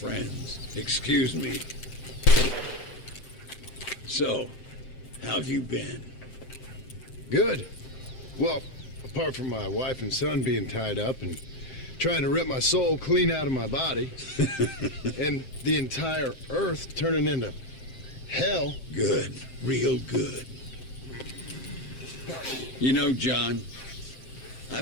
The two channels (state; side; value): late; right; 7.6 ms